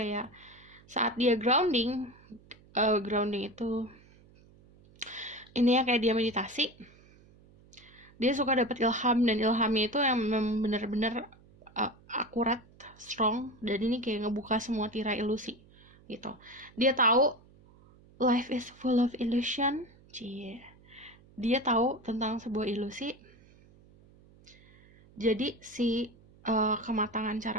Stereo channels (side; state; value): right; noise; hum, 26 dB below the sound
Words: saat dia grounding itu ini ya kayak dia meditasi. Dia suka dapat ilham, dan ilhamnya itu yang benar-benar akurat, strong, dan ini kayak ngebuka semua tirai ilusi gitu. Dia tahu life is full of illusion. Dia tahu tentang sebuah ilusi. Jadi si kematangan